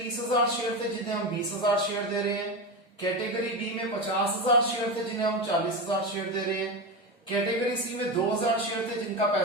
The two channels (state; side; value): normal; both; correlation 0.19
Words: शेयर थे जिन्हें हम 20,000 शेयर दे रहे हैं, कैटेगरी बी में 50,000 शेयर थे जिन्हें हम 40,000 शेयर दे रहे हैं, कैटेगरी सी में 2,000 शेयर थे जिनका